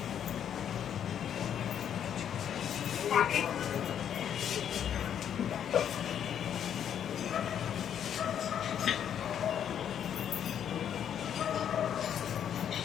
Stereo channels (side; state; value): right; quieter; 9.2 dB